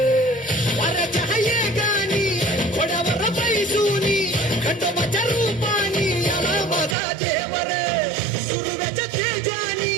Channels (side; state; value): left; drops out; at 7.0 s